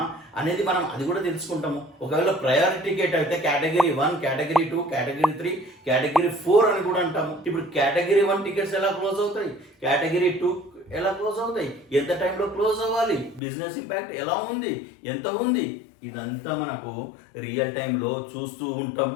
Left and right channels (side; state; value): right; drops out; at 13.4 s